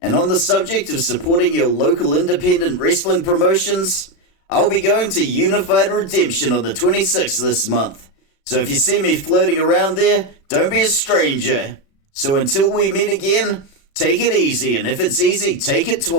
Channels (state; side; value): late; right; 36 ms